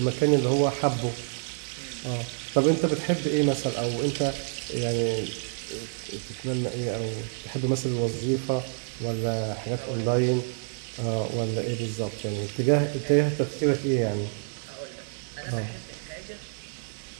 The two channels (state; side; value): silent; left; 59 dB below the other